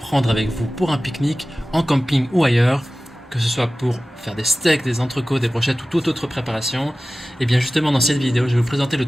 avec vous pour un pique-nique, en camping ou ailleurs, que ce soit pour faire des steaks, des entrecôtes, des brochettes ou toute autre préparation. Et bien justement dans cette vidéo, je vais vous présenter le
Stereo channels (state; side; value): normal; both; correlation 0.97